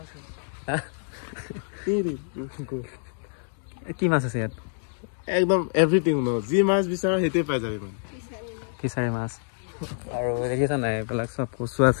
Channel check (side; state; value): right; silent; digital silence